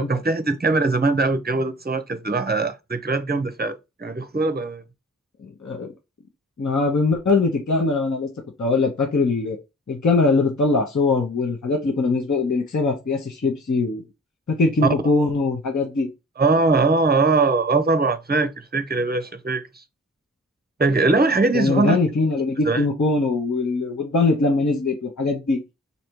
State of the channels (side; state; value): both; normal; correlation 0.43